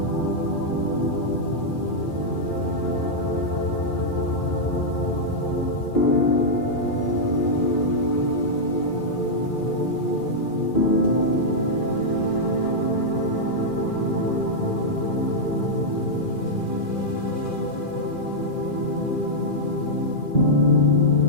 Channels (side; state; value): right; late; 2.4 ms